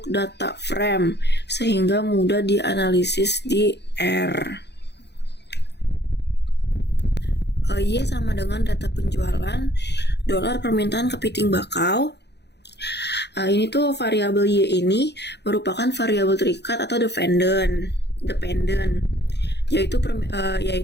data frame sehingga mudah dianalisis di R. Y sama dengan data penjualan dolar permintaan kepiting bakau. Ini tuh variabel Y ini merupakan variabel terikat atau dependent, yaitu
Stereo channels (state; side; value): late; right; 0.49 ms